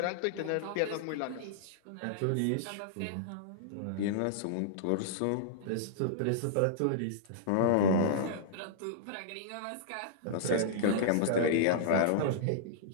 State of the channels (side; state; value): both; different; correlation -0.02